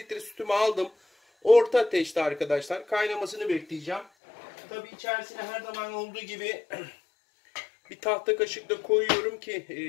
sütümü aldım. Orta ateşte arkadaşlar kaynamasını bekleyeceğim. Tabii içerisine her zaman olduğu gibi bir tahta kaşıkla koyuyorum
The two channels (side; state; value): right; drops out; at 4.0 s